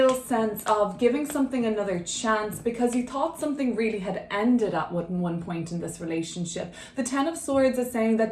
sense of giving something another chance because you thought something really had ended at one point in this relationship. The Ten of Swords is saying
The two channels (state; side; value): identical; both; correlation 1.00